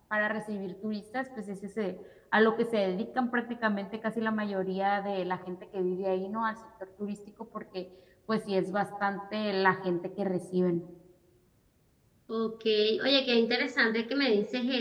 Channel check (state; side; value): identical; both; correlation 1.00